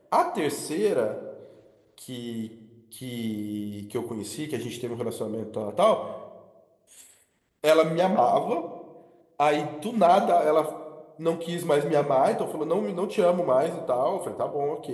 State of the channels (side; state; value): both; identical; correlation 1.00